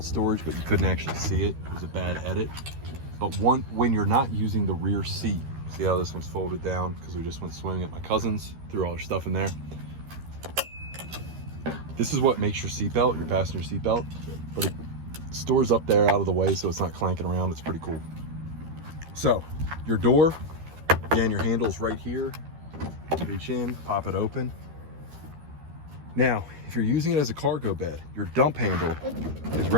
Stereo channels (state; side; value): late; left; 13 ms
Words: storage, but you couldn't actually see it. It was a bad edit. But when you're not using the rear seat, see how this one's folded down because we just went swimming at my cousin's, threw all our stuff in there. This is what makes your seatbelt, your passenger seatbelt, but it stores up there out of the way so it's not clanking around. It's pretty cool. So your door, again, your handle's right here. Reach in, pop it open. Now, if you're using it as a cargo bed, your dump handle is